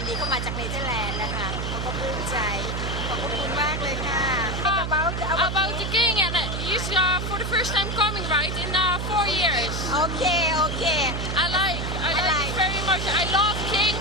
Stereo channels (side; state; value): right; noise; hum, 3 dB below the sound